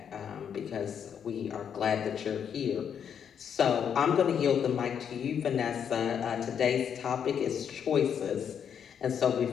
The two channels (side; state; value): right; quieter; 8.0 dB